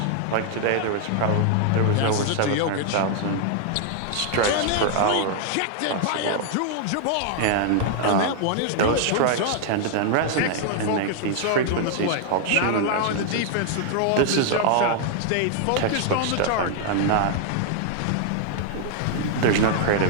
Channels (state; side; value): different; both; correlation 0.00